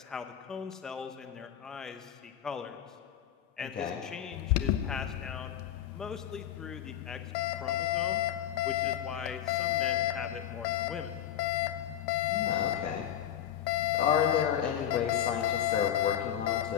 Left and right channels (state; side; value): quieter; right; 10.6 dB